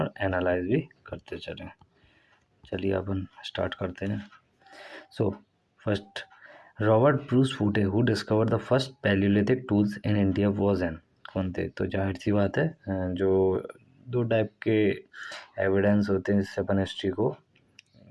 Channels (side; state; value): both; identical; correlation 1.00